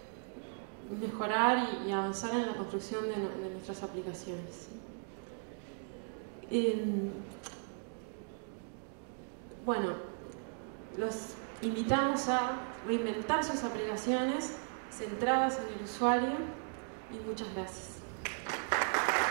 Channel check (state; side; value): silent; left; 53 dB below the other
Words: mejorar y avanzar en la construcción de nuestras aplicaciones. Bueno, los invitamos a reinventar sus aplicaciones centradas en el usuario y muchas gracias.